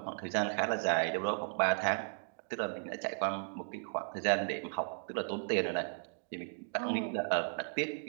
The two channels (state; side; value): silent; left; 54 dB below the other